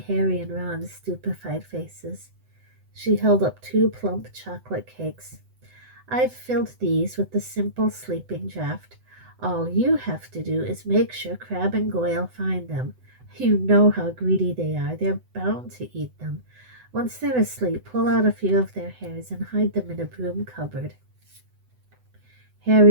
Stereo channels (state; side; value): late; left; 7.9 ms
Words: Harry and Ron's stupefied faces. She held up two plump chocolate cakes. I've filled these with the simple sleeping draught. All you have to do is make sure Crab and Goyle find them. You know how greedy they are. They're bound to eat them. Once they're asleep, pull out a few of their hairs and hide them in a broom cupboard.